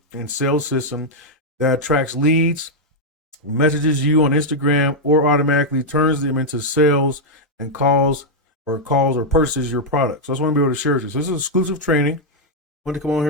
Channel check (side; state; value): both; normal; correlation -0.02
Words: and sales system that attracts leads, messages you on Instagram, or automatically turns them into sales and calls or purchases your product. So that's what I'm going to be able to share with you. So this is exclusive training. I want to come on